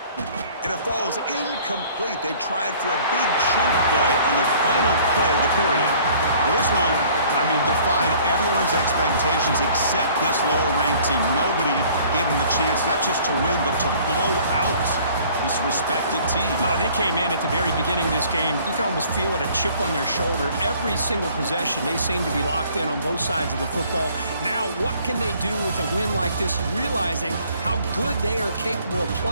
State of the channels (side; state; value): both; inverted; correlation -0.54